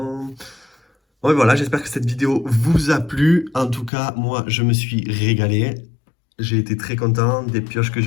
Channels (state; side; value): drops out; right; at 3.9 s